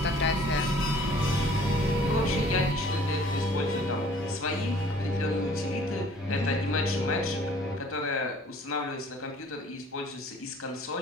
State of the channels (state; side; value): normal; both; correlation 0.54